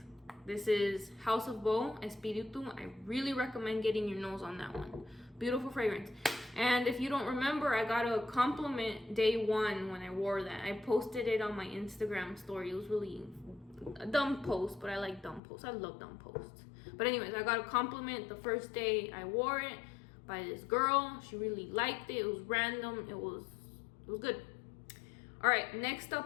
This is House of Beau, Espiritu. I really recommend getting your nose on that one. Beautiful fragrance. And if you don't remember, I got a compliment day 1 when I wore that. I posted it on my Instagram story. It was really a dumb post, but I like dumb posts. I love dumb posts. But anyways, I got a compliment the first day I wore it by this girl. She really liked it. It was random. It was good. All right, next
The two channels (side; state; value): right; drops out; at 15.4 s